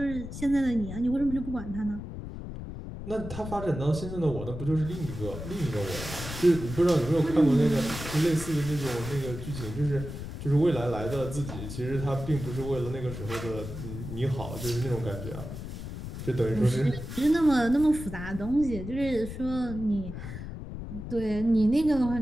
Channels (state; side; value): noise; left; rumble, 9 dB below the sound